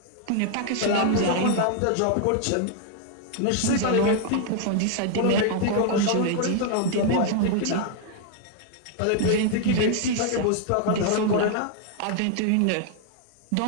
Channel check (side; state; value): both; different; correlation 0.00